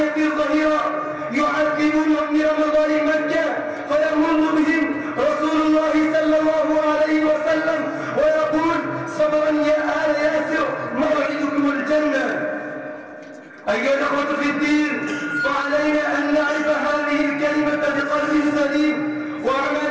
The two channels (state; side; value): identical; both; correlation 1.00